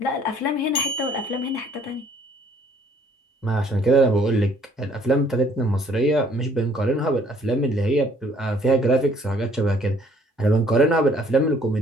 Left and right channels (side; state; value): both; normal; correlation 0.61